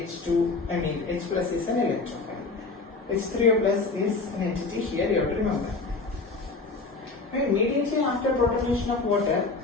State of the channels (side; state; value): right; quieter; 3.8 dB